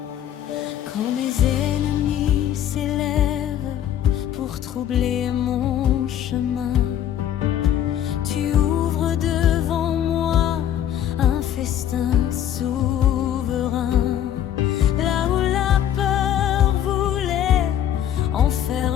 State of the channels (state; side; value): quieter; right; 10.7 dB